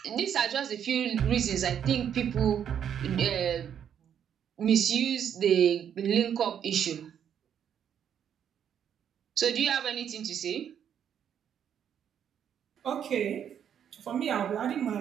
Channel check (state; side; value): quieter; left; 8.9 dB